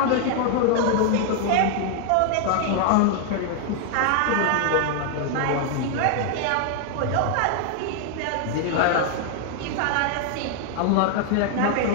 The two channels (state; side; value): different; both; correlation 0.00